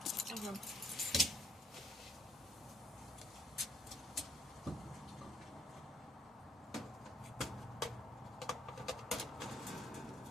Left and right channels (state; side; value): normal; both; correlation 0.67